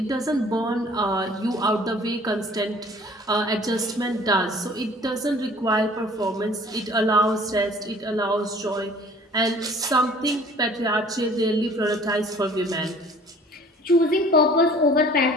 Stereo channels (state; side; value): normal; both; correlation 0.51